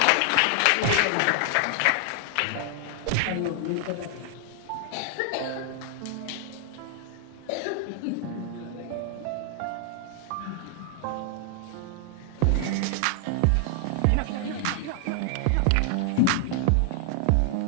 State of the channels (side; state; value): both; different; correlation 0.00